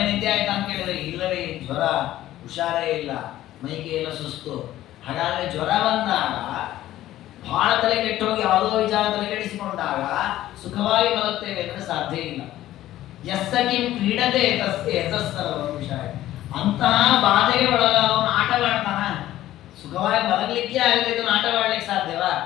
ನಿದ್ದೆ ಆಯ್ತಾ ಅಂತ ಕೇಳಿದ್ರೆ ಇಲ್ಲವೇ ಜ್ವರ, ಹುಷಾರೇ ಇಲ್ಲ, ಮೈಗೆ ಎಲ್ಲ ಸುಸ್ತು. ಹಾಗಾದ್ರೆ ಜ್ವರ ಬಂದಾಗ ಬಹಳ ತಲೆ ಕೆಟ್ಟು ಹೋಗಿ ಯಾವುದೋ ವಿಚಾರ ತಲೆ ಕೆಡಿಸಿಕೊಂಡಾಗ ಸುಖವಾಗಿ ಮಲಗ್ತೇವೆ ಅಂದ್ರೆ ಸಾಧ್ಯ ಇಲ್ಲ. ಯಸ್ಸ ಕಿಂ ಕ್ರೀಡತೆ ತಸ್ಯ ಯತಸ್ಸರ್ವಂ ವಿಷಯ. ಅಂತಹ ಬಾಧೆಗೆ ಒಳಗಾದವನು ಆಟವಾಡ್ತಾನ? ಸುಖವಾಗಿ ಮಲಗಲಿಕ್ಕೆ ಆಗದೆ ಇದನ್ನು ಆಟವಾಡ್ಲಿಕ್ಕೆ ಸಾಧ್ಯವಾ?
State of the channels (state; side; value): quieter; right; 14.1 dB